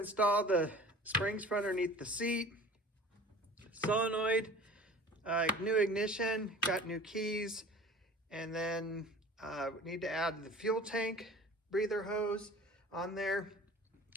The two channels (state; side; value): normal; both; correlation 0.43